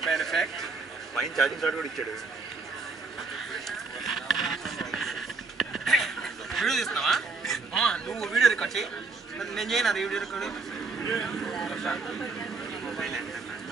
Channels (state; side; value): quieter; left; 4.1 dB